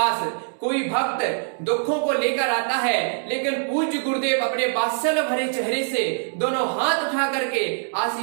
कोई भक्त दुखों को लेकर आता है, लेकिन पूज्य गुरुदेव अपने वात्सल्य भरे चेहरे से दोनों हाथ उठा करके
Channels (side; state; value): left; silent; digital silence